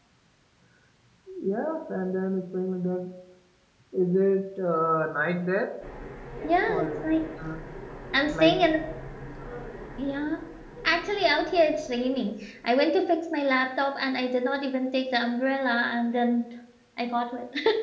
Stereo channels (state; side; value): identical; both; correlation 1.00